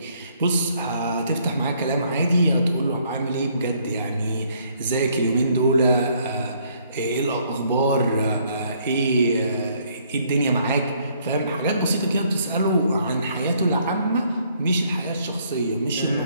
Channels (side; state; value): both; inverted; correlation -0.66